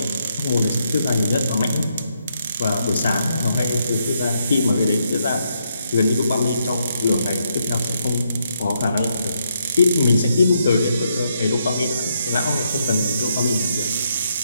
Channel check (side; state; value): both; inverted; correlation -0.77